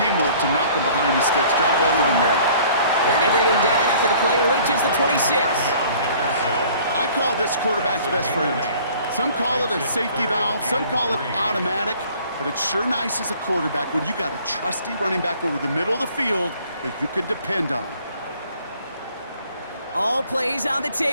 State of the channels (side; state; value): both; inverted; correlation -0.53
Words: to knock him behind the sticks. Job well done there. And they bring him down after the play reaches the 26. I call this quarterback's best friend. Some call it a safety valve, some call it automatic, but it's sure nice as a quarterback when you got a trusty running back over the middle of the field that you can depend on. All plays on the